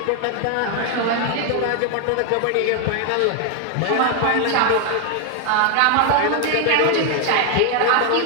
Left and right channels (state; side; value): different; both; correlation 0.01